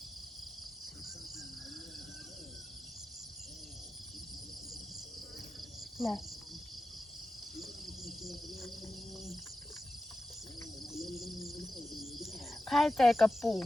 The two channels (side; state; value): both; normal; correlation 0.92